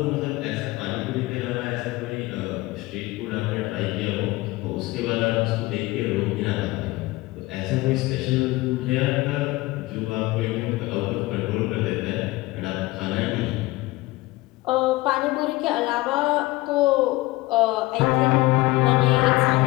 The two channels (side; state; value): right; quieter; 20.2 dB